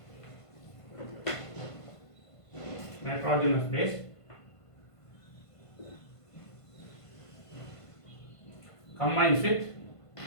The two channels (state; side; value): late; right; 1.5 ms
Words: Nitrogenous base combines with